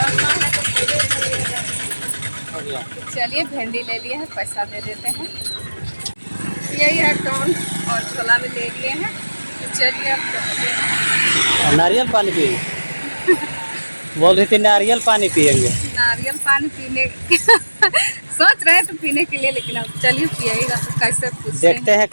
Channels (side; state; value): both; inverted; correlation -1.00